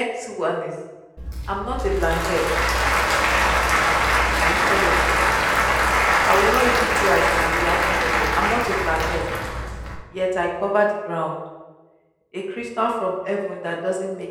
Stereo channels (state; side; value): identical; both; correlation 1.00